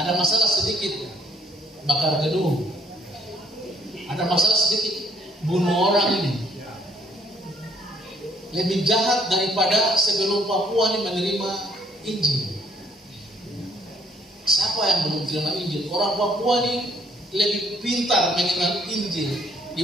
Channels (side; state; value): both; normal; correlation 0.65